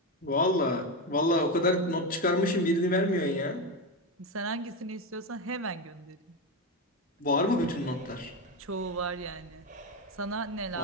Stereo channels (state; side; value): normal; both; correlation 0.14